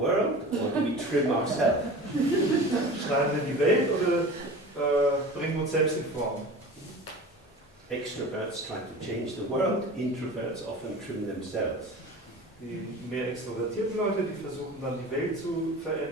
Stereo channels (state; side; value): normal; both; correlation 0.37